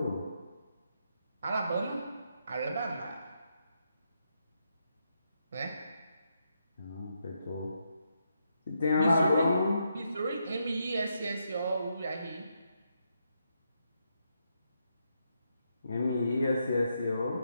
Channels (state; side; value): inverted; both; correlation -0.80